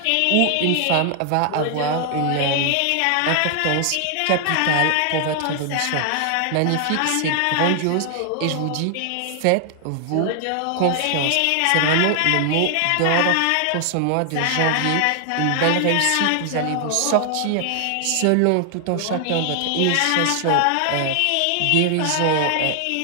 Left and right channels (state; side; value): different; both; correlation 0.00